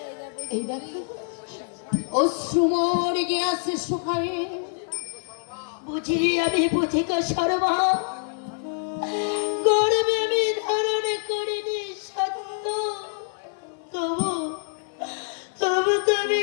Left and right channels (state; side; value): silent; right; 61 dB below the other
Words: এই দেখো অশ্রুমর গিয়াছে শুকায়ে, বুঝি আমি বুঝি গো সর্বা, গর্বে আমি ধারণ করিনি সত্য, তবু তবু তুমি